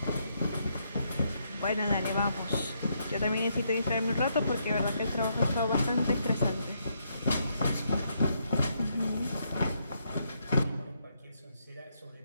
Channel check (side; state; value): both; inverted; correlation -0.76